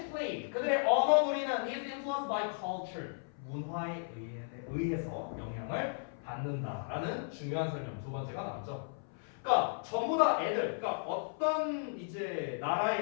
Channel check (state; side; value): silent; right; 54 dB below the other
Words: play. 그들의 언어 놀이는 is influenced by culture. 문화에 의해서 영향을 받는다라는 중요한 설명 두 번째가 나왔죠. 그러니까 전부 다 애들, 그러니까 어떤 이제